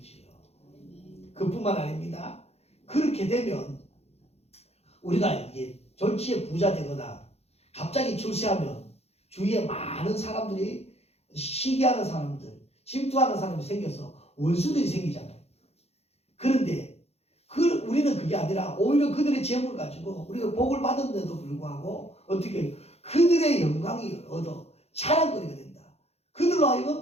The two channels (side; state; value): right; late; 0.30 ms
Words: 그뿐만 아닙니다. 그렇게 되면 우리가 이게 졸지에 부자 되거나 갑자기 출세하면 주위에 많은 사람들이 시기하는 사람들, 질투하는 사람이 생겨서 원수들이 생기잖아요. 그런데 우리는 그게 아니라 오히려 그들의 재물을 가지고 우리가 복을 받았는데도 불구하고 어떻게 해요? 그들의 영광이 얻어 자랑거리가 된다. 그들로